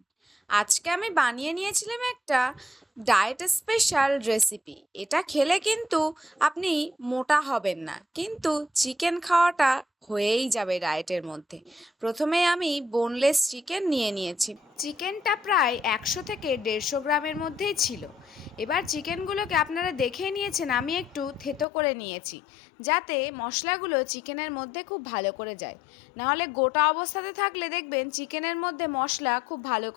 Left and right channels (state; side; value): drops out; right; at 21.7 s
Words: আজকে আমি বানিয়ে নিয়েছিলাম একটা ডায়েট স্পেশাল রেসিপি। এটা খেলে কিন্তু আপনি মোটা হবেন না, কিন্তু চিকেন খাওয়াটা হয়েই যাবে ডায়েটের মধ্যে। প্রথমে আমি বোনলেস চিকেন নিয়ে নিয়েছি। চিকেনটা প্রায় 100 থেকে 150 গ্রামের মধ্যেই ছিল। এবার চিকেনগুলোকে আপনারা দেখেই নিয়েছেন, আমি একটু থেতো করে নিয়েছি যাতে মশলাগুলো চিকেনের মধ্যে খুব ভালো করে যায়। নাহলে গোটা অবস্থাতে থাকলে দেখবেন চিকেনের মধ্যে মশলা খুব ভালো